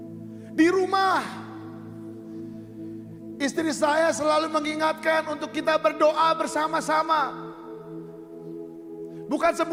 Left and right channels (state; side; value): identical; both; correlation 1.00